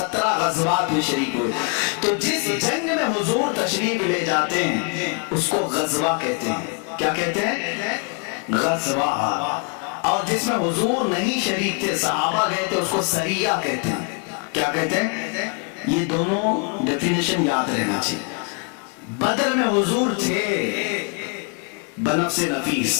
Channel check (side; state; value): right; quieter; 34.7 dB